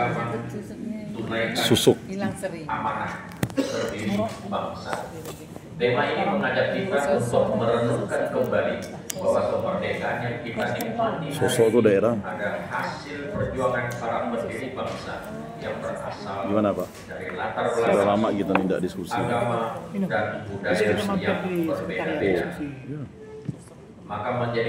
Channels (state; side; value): identical; both; correlation 1.00